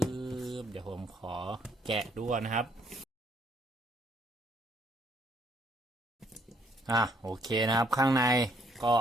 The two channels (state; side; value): normal; both; correlation 0.67